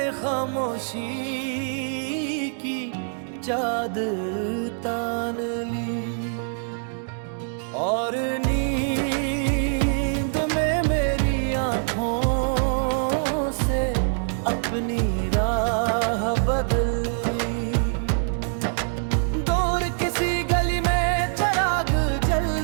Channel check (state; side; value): silent; left; digital silence